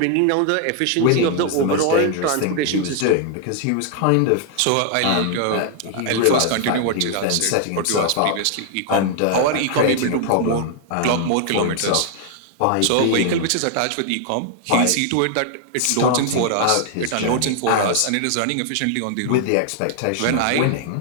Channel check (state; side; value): different; both; correlation 0.00